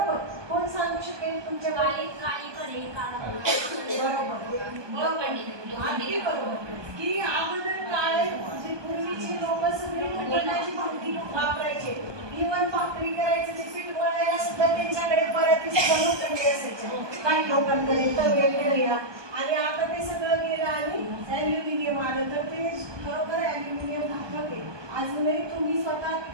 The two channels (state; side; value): late; left; 1.2 ms